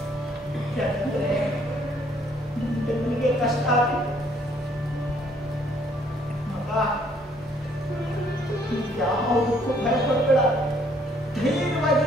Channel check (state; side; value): normal; both; correlation 0.65